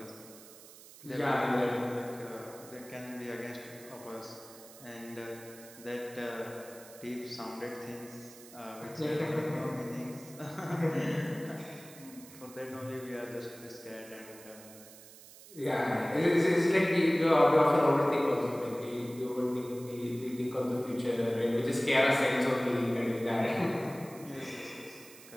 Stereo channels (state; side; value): noise; right; hiss, 19 dB below the sound